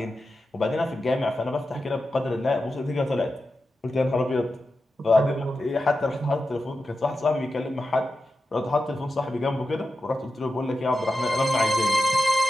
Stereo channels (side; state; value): both; normal; correlation 0.91